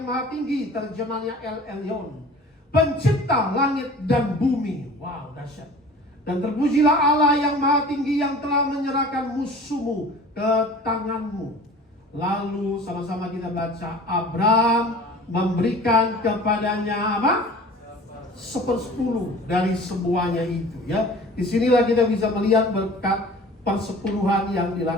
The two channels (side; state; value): both; normal; correlation 0.43